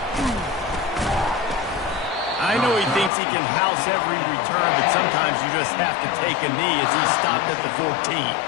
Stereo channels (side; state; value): right; drops out; at 3.1 s